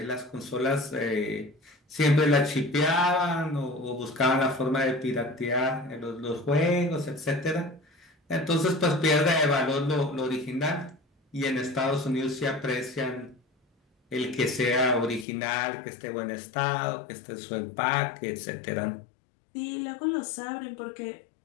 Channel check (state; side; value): drops out; right; at 15.2 s